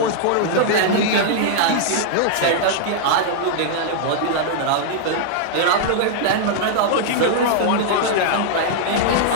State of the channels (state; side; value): different; both; correlation -0.01